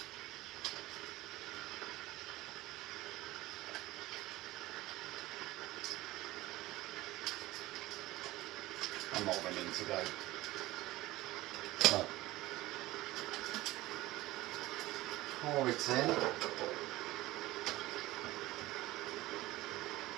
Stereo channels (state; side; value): quieter; left; 18.0 dB